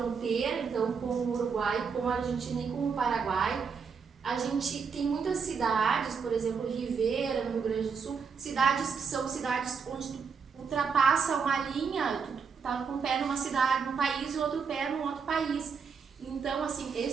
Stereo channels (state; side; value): quieter; left; 5.9 dB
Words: então com o Uruguai, com a Argentina e com o Paraguai, a gente tem muitas cidades, por exemplo, Rivera, no Rio Grande do Sul, cidades que são cidades onde tu ultrapassa uma linha, tu tá com um pé numa cidade, num país e outro pé num outro país. Então, assim,